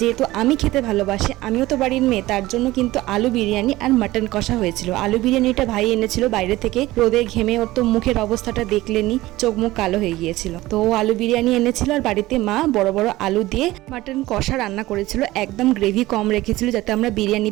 আমি খেতে ভালোবাসি, আমিও তো বাড়ির মেয়ে, তার জন্য কিন্তু আলু বিরিয়ানি আর মাটন কষা হয়েছিল। আলু বিরিয়ানিটা ভাই এনেছিল বাইরে থেকে, রোদে ঘেমে ওর তো মুখের অবস্থাটা দেখলেনি, চোখ মুখ কালো হয়ে গিয়েছিল। তো ও আলু বিরিয়ানি এনেছিল, আর বাড়িতে মা বড় বড় আলু দিয়ে মাটন কষা রান্না করেছিল, একদম গ্রেভি কম রেখেছিল যাতে আমরা বিরিয়ানি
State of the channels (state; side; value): quieter; left; 17.7 dB